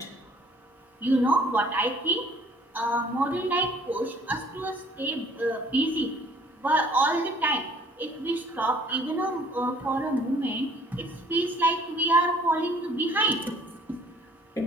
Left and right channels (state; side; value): normal; both; correlation 0.57